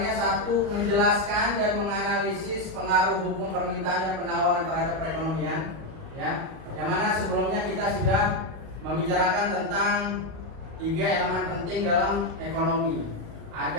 satu, menjelaskan dan menganalisis pengaruh hukum permintaan dan penawaran terhadap perekonomian. Ya, yang mana sebelumnya kita sudah membicarakan tentang 3 elemen penting dalam ekonomi.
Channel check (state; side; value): late; left; 38 ms